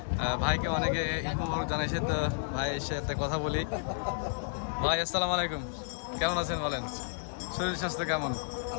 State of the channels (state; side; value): silent; right; digital silence